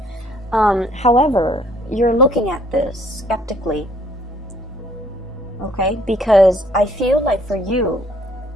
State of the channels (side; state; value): both; normal; correlation 0.62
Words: However, you're looking at this skeptically, okay? Because I feel like for you,